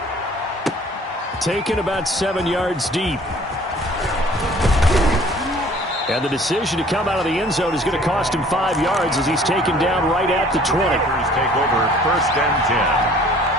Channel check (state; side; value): normal; both; correlation 0.53